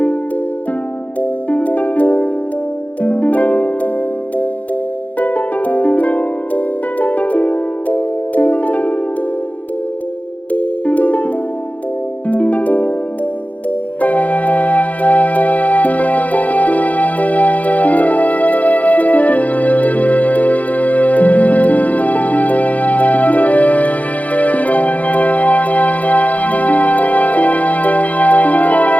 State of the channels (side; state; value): right; late; 0.072 ms